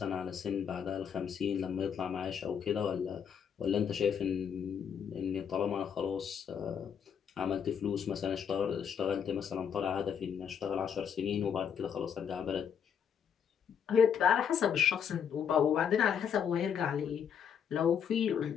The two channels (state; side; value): quieter; right; 7.8 dB